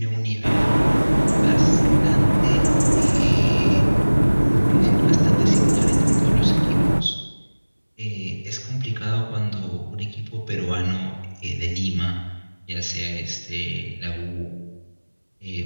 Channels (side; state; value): both; inverted; correlation -1.00